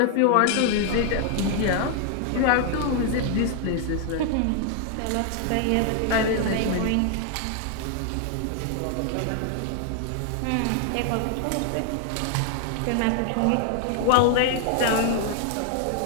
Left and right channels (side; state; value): both; different; correlation 0.00